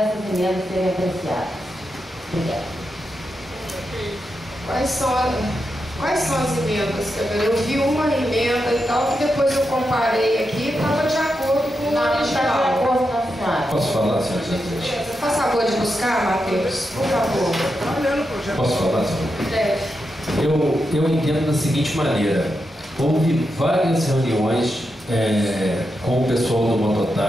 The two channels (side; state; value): both; normal; correlation 0.86